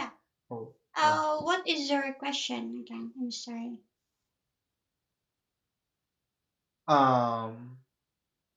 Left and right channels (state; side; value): identical; both; correlation 1.00